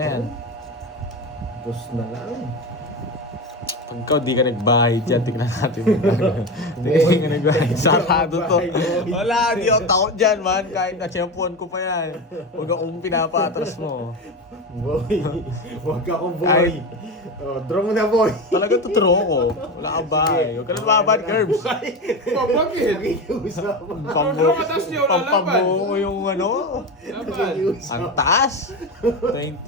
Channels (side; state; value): both; normal; correlation 0.21